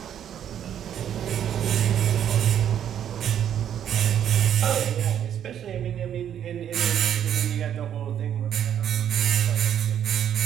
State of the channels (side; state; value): left; quieter; 9.7 dB